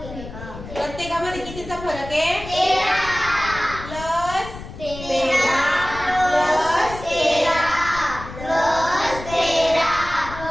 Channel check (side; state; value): left; noise; rumble, 13 dB below the sound